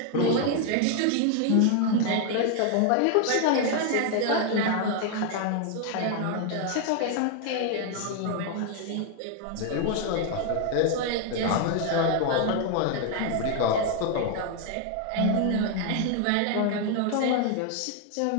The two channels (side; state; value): both; different; correlation 0.00